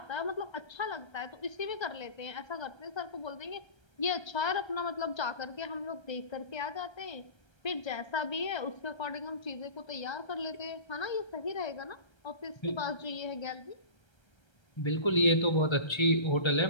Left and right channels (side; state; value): right; late; 1.3 ms